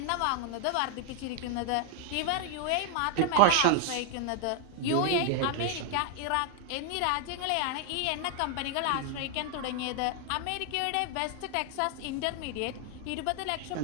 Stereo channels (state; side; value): different; both; correlation 0.00